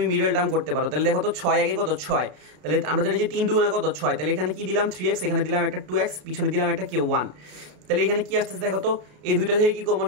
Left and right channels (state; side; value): late; left; 33 ms